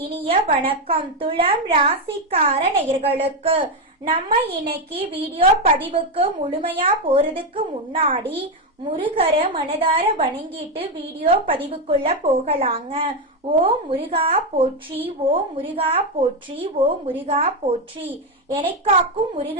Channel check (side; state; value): both; normal; correlation 0.07